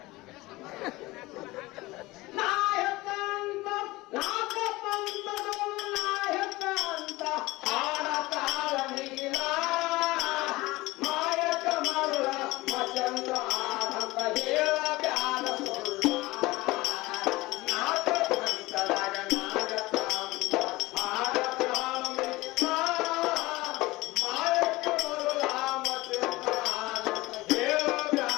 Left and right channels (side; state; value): right; quieter; 20.3 dB